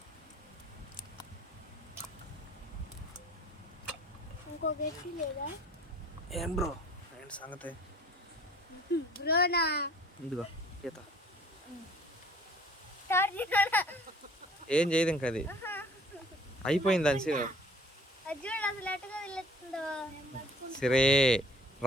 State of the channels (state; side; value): normal; both; correlation 0.53